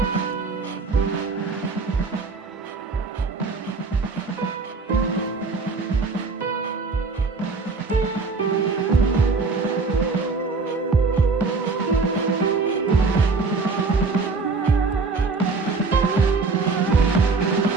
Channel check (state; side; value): quieter; left; 4.2 dB